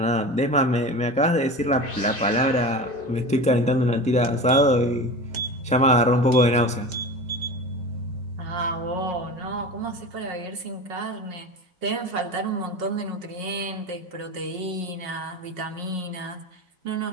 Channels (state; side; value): normal; both; correlation 0.31